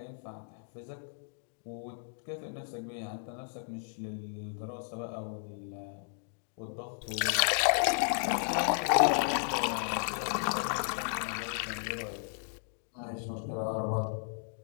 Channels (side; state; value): right; silent; digital silence